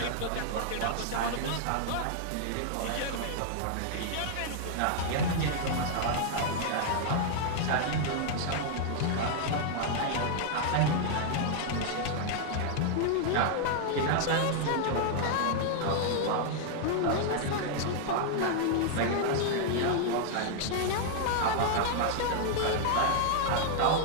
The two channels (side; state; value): both; different; correlation 0.00